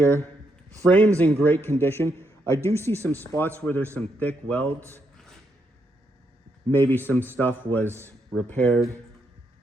Frame's in great condition. I do see some spots where there's some thick welds. Maybe some stuff was repaired,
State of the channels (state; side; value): normal; both; correlation 0.79